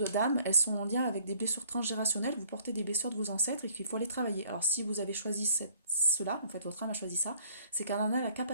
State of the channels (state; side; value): inverted; both; correlation -0.59